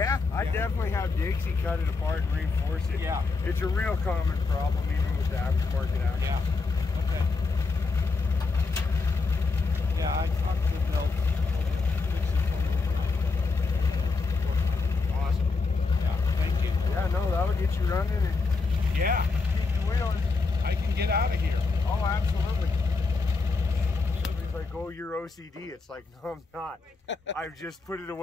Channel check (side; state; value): right; quieter; 4.1 dB